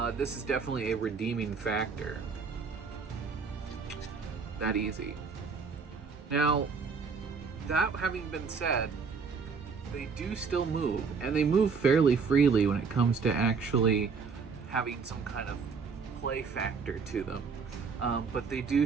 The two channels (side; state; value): left; quieter; 5.3 dB